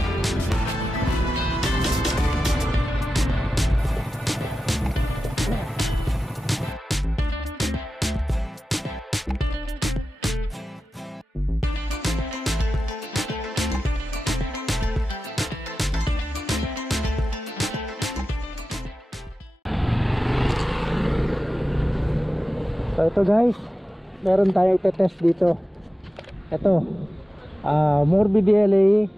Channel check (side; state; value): both; normal; correlation 0.93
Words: So ito guys, meron tayong test dito. Ito Morbidelli